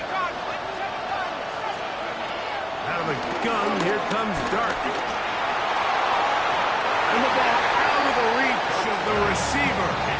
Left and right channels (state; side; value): identical; both; correlation 1.00